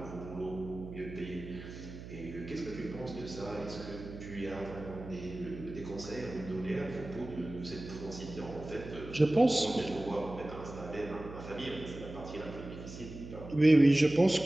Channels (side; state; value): right; noise; hum, 12 dB below the sound